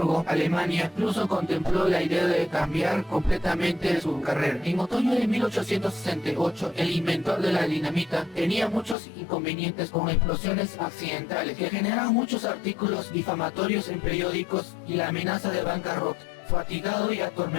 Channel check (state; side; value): drops out; right; at 9.0 s